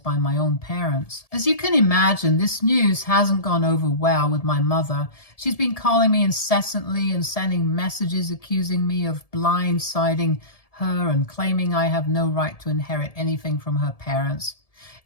by my own parents. As you can imagine, this news hasn't gone over well with my mother. She's been calling me incessantly and sending messages accusing me of blindsiding her and claiming I have no right to inherit anything from her parents.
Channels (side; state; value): right; late; 1.7 ms